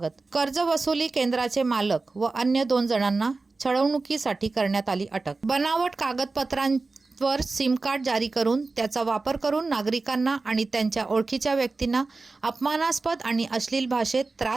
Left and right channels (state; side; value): quieter; left; 3.7 dB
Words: कर्ज वसुली केंद्राचे मालक व अन्य 2 जणांना छळवणुकीसाठी करण्यात आली अटक। बनावट कागदपत्रांवर सिम कार्ड जारी करून त्याचा वापर करून नागरिकांना आणि त्यांच्या ओळखीच्या व्यक्तींना अपमानास्पद आणि अश्लील भाषेत